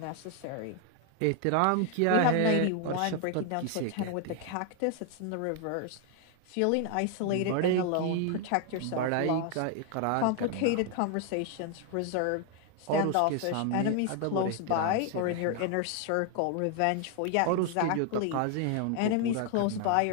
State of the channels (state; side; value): different; both; correlation 0.00